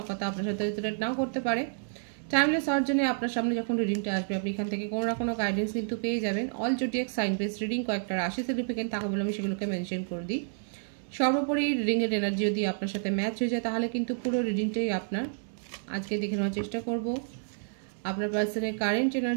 কথা আপনার সাথে রিলেট নাও করতে পারে। টাইমলেস হওয়ার জন্য আপনার সামনে যখন রিডিংটা আসবে আপনি এখান থেকে কোনো না কোনো গাইডেন্স কিন্তু পেয়ে যাবেন। All zodiac sign base reading কয়েকটা রাশি সিগনিফিকেন্ট থাকে বলে আমি সেগুলোকে মেনশন করে দিই। সর্বোপরি রিডিংয়ের এনার্জি যদি আপনার সাথে ম্যাচ হয়ে যায় তাহলে কিন্তু পুরো রিডিংটাই আপনার। আজকে দেখে নেওয়ার চেষ্টা করব আপনার পার্সনের কারেন্ট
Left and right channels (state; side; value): silent; left; digital silence